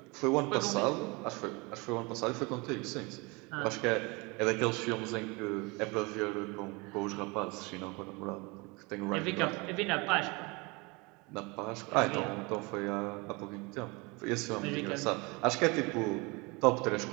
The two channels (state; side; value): quieter; left; 27.0 dB